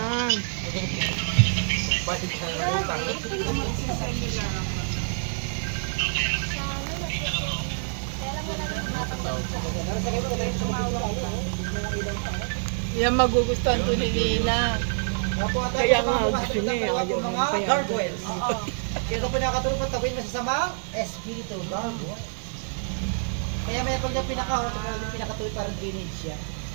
Yan magugustuhan to ni Nina. Opo, at Kaya ako nga, mga gusto niya eh, mga ayaw mga niya payagan. gargoyles. Kaya ito po nakatulong po tabuin masasamang espiritu gargoyle. Kaya may pag niya pinakahot, kaya yung pinakatuloy parang drainage siya.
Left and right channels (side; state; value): left; silent; 60 dB below the other